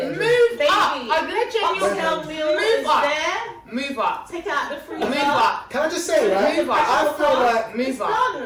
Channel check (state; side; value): identical; both; correlation 1.00